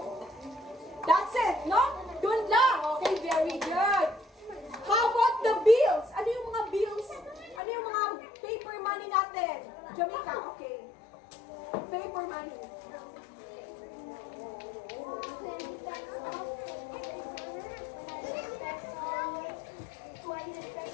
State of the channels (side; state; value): right; drops out; at 7.6 s